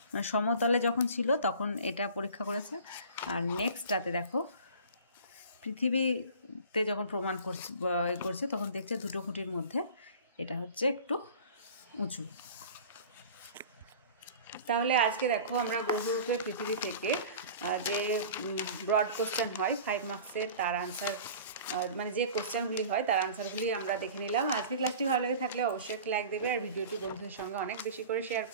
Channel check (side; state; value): both; inverted; correlation -0.41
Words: সমতলে যখন ছিল তখন এটা পরীক্ষা করেছে। আর নেক্সটটাতে দেখো পৃথিবীতে যখন প্রমাণ করছে তখন দেখছে 2টো খুঁটির মধ্যে এটা হচ্ছে একটু উঁচু। তাহলে আজকে দেখো আমরা গ্রহরূপে পৃথিবী থেকে যে ব্রড কোশ্চেন হয় 5 মার্কসের, তার আনসার মানে যে কোশ্চেনগুলি হয় তার আনসারগুলি আমরা দেখে নিলাম। আজকে ক্লাসটি ভালো লেগে থাকলে অবশ্যই একটা লাইক দেবে, আর ভিডিওটি বন্ধুদের সঙ্গে অনেক বেশি করে শেয়ার